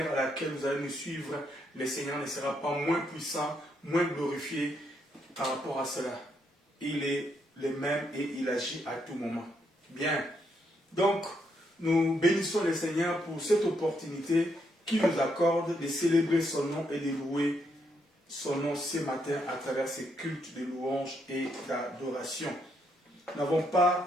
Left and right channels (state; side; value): normal; both; correlation 0.76